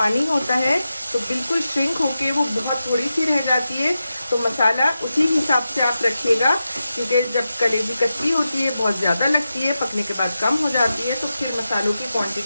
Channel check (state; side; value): inverted; both; correlation -0.91